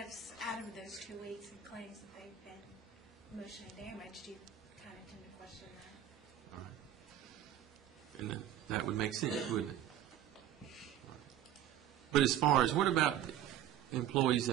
out of those 2 weeks, and claims that they've been emotionally damaged. You kind of tend to question that. All right. And that would make sense, wouldn't it? But as far as, what about employees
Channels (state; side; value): quieter; left; 10.7 dB